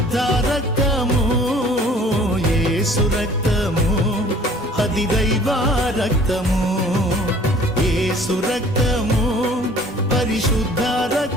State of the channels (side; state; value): both; normal; correlation 0.52